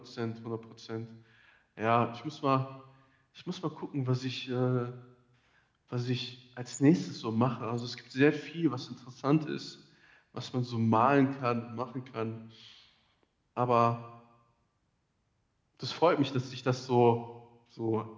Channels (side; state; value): both; identical; correlation 1.00